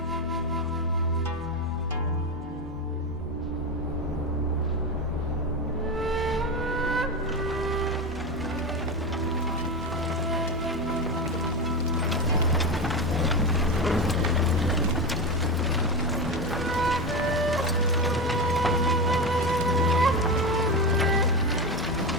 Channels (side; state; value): both; normal; correlation 0.17